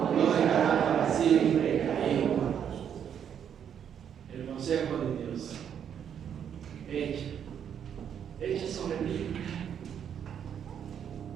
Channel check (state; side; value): quieter; left; 8.6 dB